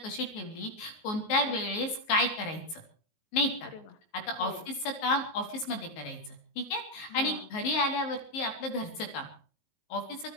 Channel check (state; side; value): late; right; 19 ms